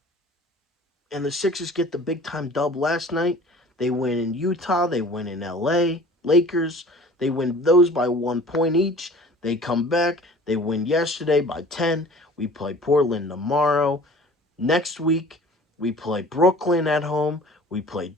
And the Sixers get the big time dub last night. They win in Utah. They win in LA. Lakers. They win those by 1 point each. They come back. They win yesterday by 10. We play Portland tomorrow. Next week, we play Brooklyn at home. We play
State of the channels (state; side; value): normal; both; correlation 0.46